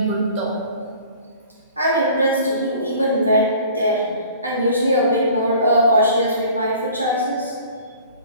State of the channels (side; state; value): both; inverted; correlation -0.49